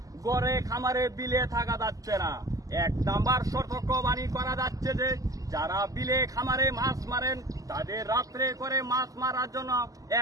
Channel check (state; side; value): late; left; 0.17 ms